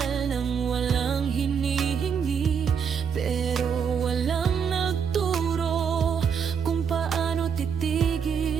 ng walang hinihingi, pero walang nagturo kung paano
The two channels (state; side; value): quieter; left; 6.9 dB